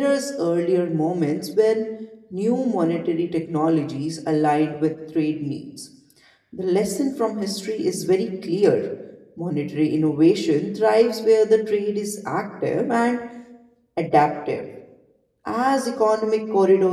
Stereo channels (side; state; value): both; identical; correlation 1.00